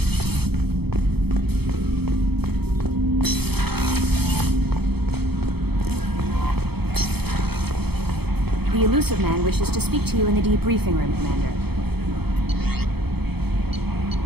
The elusive man wishes to speak to you in the debriefing room, Commander.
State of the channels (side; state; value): left; late; 0.97 ms